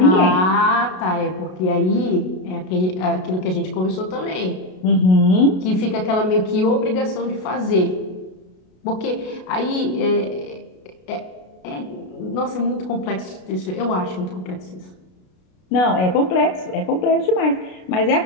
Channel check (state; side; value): late; right; 33 ms